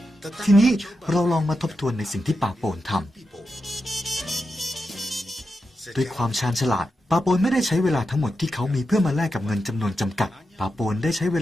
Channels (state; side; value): normal; both; correlation 0.88